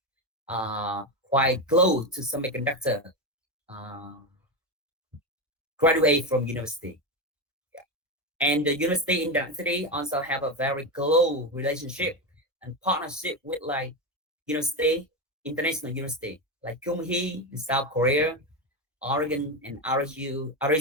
quite close to semiconductor uh, graduate from university. Yeah. And the university in Dang City also have a very close relationship and partnership with like university, international university like Kyung-hee in South Korea, Oregon and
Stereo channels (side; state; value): both; normal; correlation 0.14